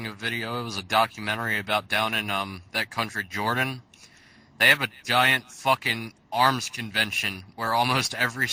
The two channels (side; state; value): both; identical; correlation 1.00